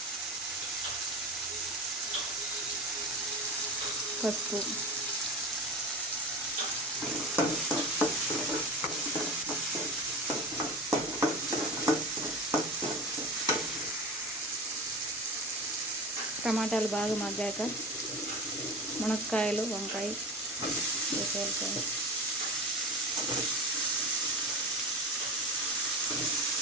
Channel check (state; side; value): normal; both; correlation 0.29